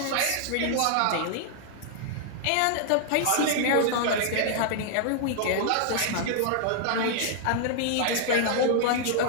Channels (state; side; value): different; both; correlation -0.01